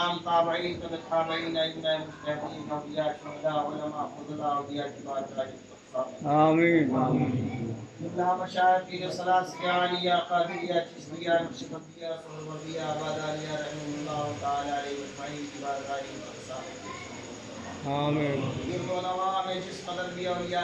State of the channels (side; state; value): both; identical; correlation 1.00